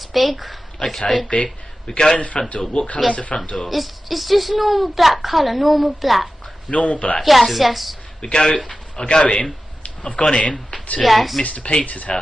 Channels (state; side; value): normal; both; correlation 0.94